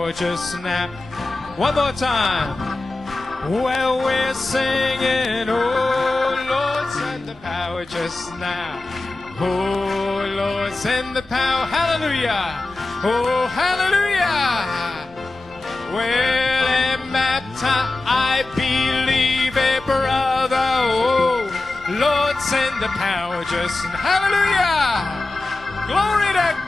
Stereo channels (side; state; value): right; quieter; 3.1 dB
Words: just now. One more time. Well, we're singing, oh, Lord, send the power just now. Oh, Lord, send the power. Hallelujah. Oh, hallelujah. Well, and baptize, I believe a brother. Oh, Lord, send the power just now. Hallelujah! Glory to